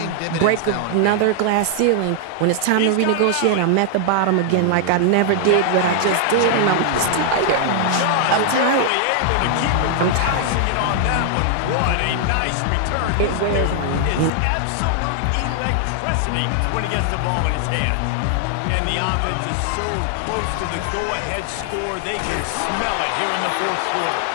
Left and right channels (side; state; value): both; different; correlation 0.00